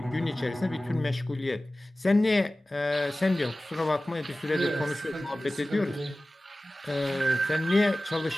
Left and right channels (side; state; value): both; normal; correlation 0.96